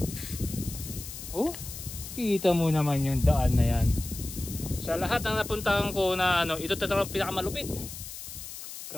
Oh, kita mo naman yung daan na yan. Sa lahat ng napuntahan ko na ano, ito talagang pinakamalupit.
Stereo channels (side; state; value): left; noise; hiss, 11 dB below the sound